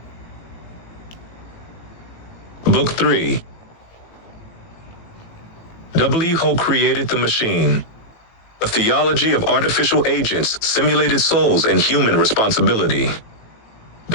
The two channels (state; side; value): late; right; 18 ms